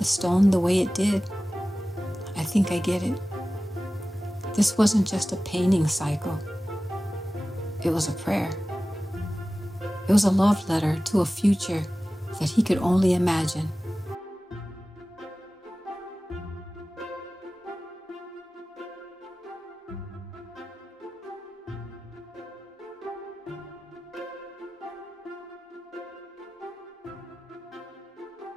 stone the way it did, I think I get it. This wasn't just a painting cycle. It was a prayer. It was a love letter to a future that he could only imagine.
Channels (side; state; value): both; normal; correlation 0.96